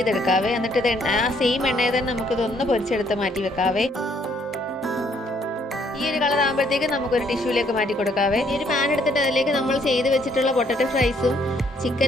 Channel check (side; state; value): both; normal; correlation 0.67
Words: എന്നിട്ട് ഇത് ആ സെയിം എണ്ണയിൽ തന്നെ നമുക്കിതൊന്ന് പൊരിച്ചെടുത്ത് മാറ്റി വെക്കാവേ. ഈ ഒരു കളർ ആകുമ്പോഴത്തേക്ക് നമുക്കൊരു ടിഷ്യൂലേക്ക് മാറ്റി കൊടുക്കാവേ. ഈ ഒരു പാൻ എടുത്തിട്ട് അതിലേക്ക് നമ്മൾ ചെയ്ത് വെച്ചിട്ടുള്ള പൊട്ടറ്റോ ഫ്രൈസും